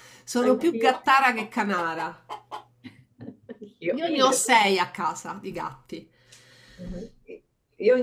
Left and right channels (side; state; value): both; identical; correlation 1.00